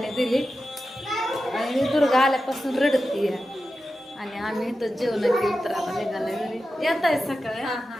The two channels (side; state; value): both; normal; correlation 0.92